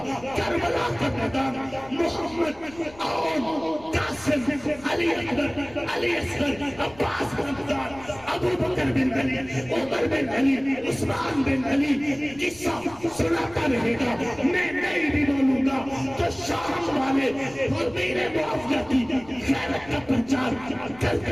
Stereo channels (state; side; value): noise; left; rumble, 22 dB below the sound